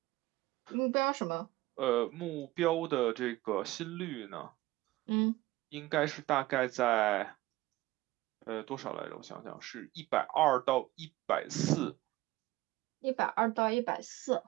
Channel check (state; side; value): quieter; left; 18.0 dB